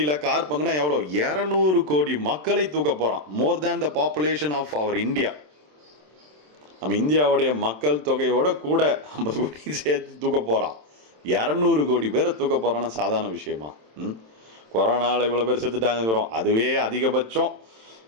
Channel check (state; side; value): late; left; 27 ms